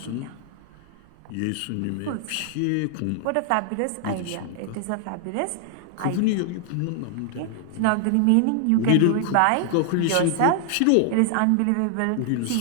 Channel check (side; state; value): both; different; correlation 0.00